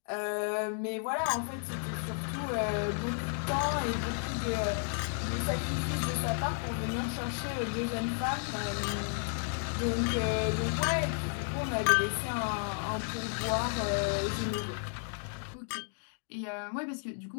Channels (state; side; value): silent; right; 56 dB below the other